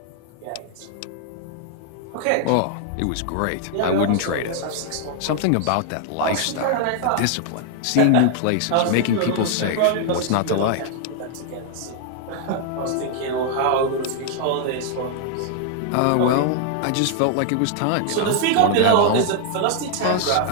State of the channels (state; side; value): different; both; correlation 0.00